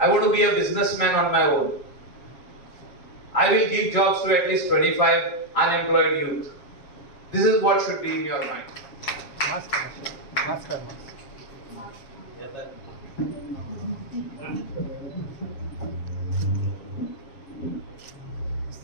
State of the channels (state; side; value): late; right; 7.3 ms